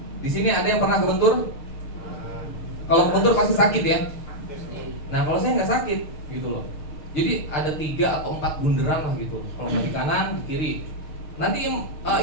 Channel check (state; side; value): late; right; 6.6 ms